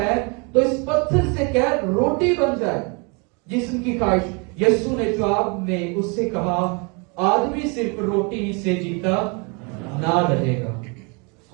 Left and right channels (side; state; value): left; quieter; 32.3 dB